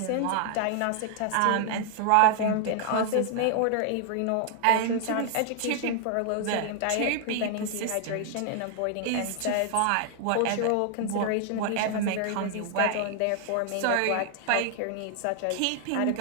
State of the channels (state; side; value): different; both; correlation 0.00